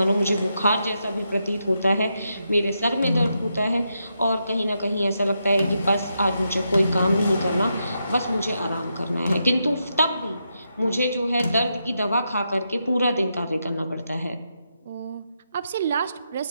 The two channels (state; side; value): inverted; both; correlation -0.83